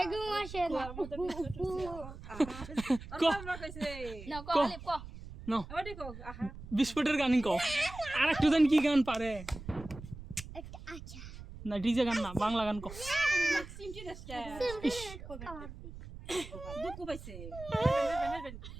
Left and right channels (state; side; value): noise; right; rumble, 13 dB below the sound